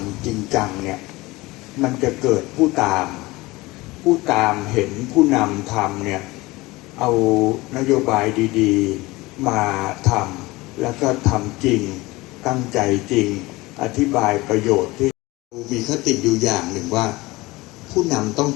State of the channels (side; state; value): right; quieter; 21.0 dB